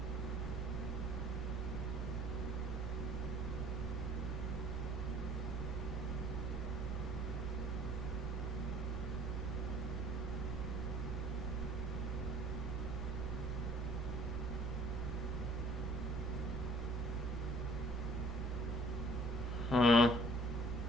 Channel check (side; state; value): both; normal; correlation 0.55